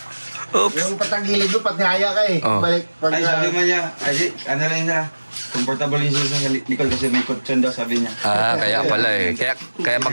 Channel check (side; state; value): both; inverted; correlation -1.00